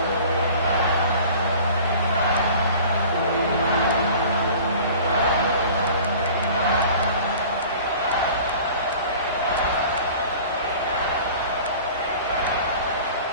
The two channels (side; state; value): both; inverted; correlation -0.44